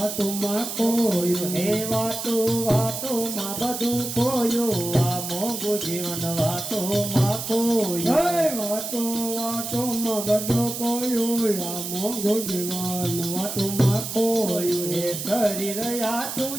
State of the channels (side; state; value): right; noise; hiss, 6 dB below the sound